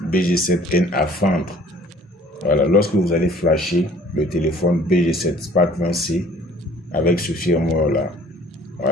BG7N à vendre. Voilà, lorsque vous allez flasher le téléphone BG7 Spark 20C avec ce firmware-là,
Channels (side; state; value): both; normal; correlation 0.53